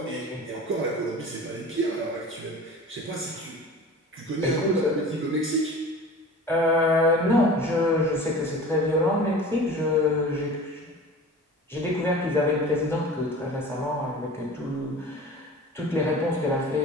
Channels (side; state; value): both; normal; correlation 0.39